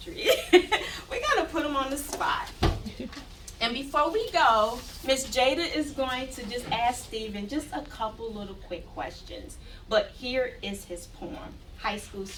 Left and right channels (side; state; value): both; identical; correlation 1.00